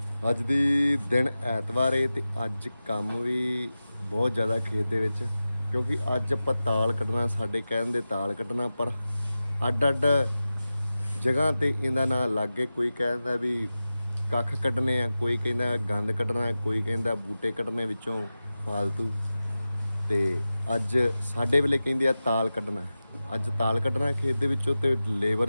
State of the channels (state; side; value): inverted; both; correlation -0.94